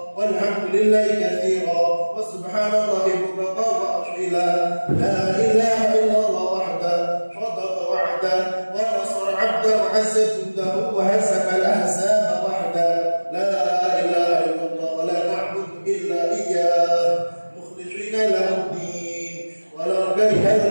walhamdulillahi katsira, wa subhanallahi bukratan wa asila. La ilaha illallah wahda, sadaqa wa'da, wa nasara 'abda, wa 'azza jundahu, wa hasaka al-ahzaba wahda. La ilaha illallah, wa la na'budu illa iyyah, mukhlishina lahu din, wa la kariha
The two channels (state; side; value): inverted; both; correlation -1.00